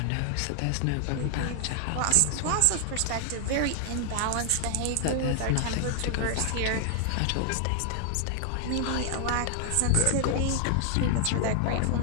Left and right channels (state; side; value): different; both; correlation 0.00